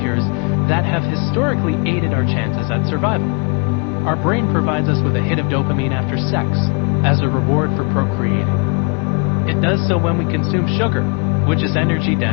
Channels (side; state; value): right; quieter; 33.1 dB